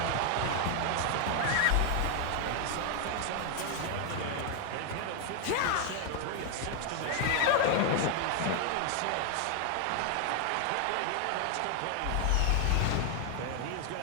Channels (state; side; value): different; both; correlation 0.00